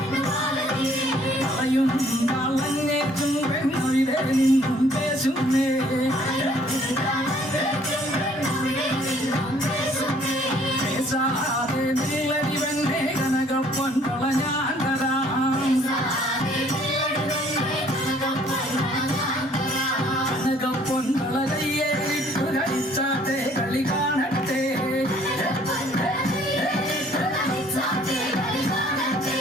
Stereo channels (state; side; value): normal; both; correlation 0.60